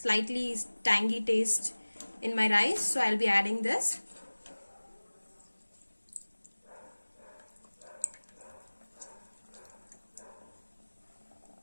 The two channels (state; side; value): inverted; both; correlation -1.00